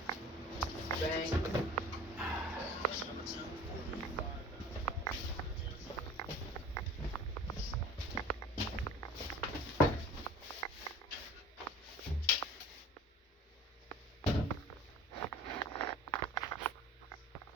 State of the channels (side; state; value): both; normal; correlation 0.42